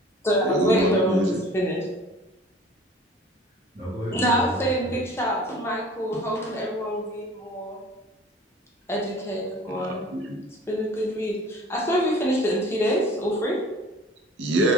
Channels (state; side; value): normal; both; correlation 0.46